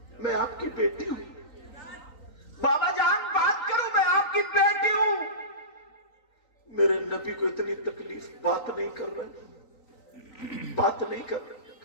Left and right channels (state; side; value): late; right; 3.9 ms